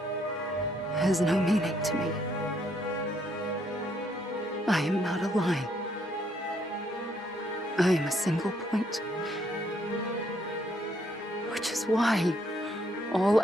has no meaning to me. I am not a line. I am a single point. Which is why all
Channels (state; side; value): normal; both; correlation 0.71